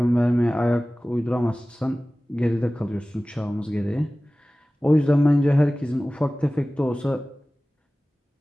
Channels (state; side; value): normal; both; correlation 0.97